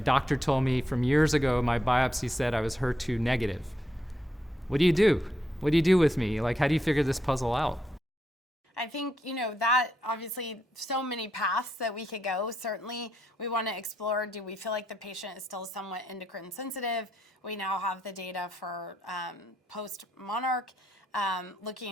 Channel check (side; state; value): both; normal; correlation 0.80